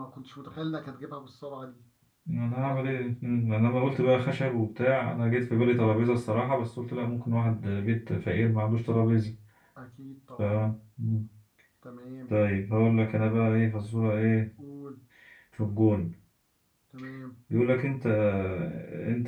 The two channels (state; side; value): identical; both; correlation 1.00